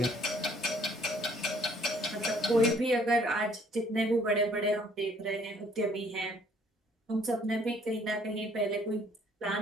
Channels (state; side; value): normal; both; correlation 0.61